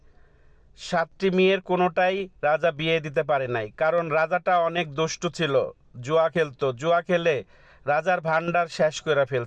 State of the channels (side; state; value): both; identical; correlation 1.00